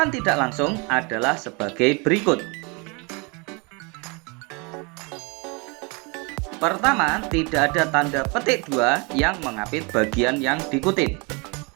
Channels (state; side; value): quieter; left; 30.9 dB